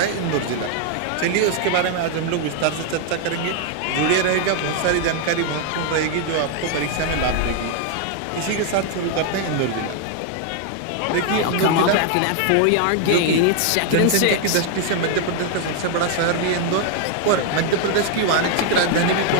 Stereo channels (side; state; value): both; different; correlation 0.00